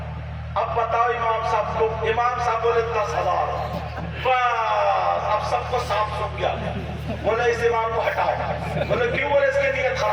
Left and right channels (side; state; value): both; identical; correlation 1.00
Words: اب بتاؤ امام صاحب بولے 10,000. بس اب سب کو صاف سن گیا. بولے اس امام کو ہٹاؤ. بولے کیوں؟ بولے اس کی نیت